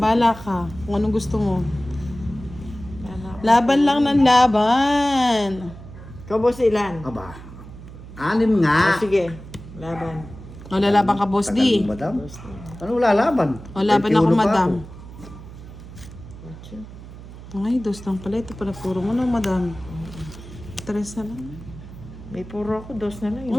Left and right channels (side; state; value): right; noise; hum, 15 dB below the sound